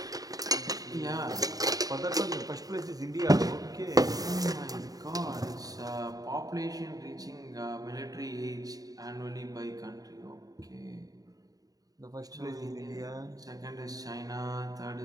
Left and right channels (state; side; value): late; left; 0.18 ms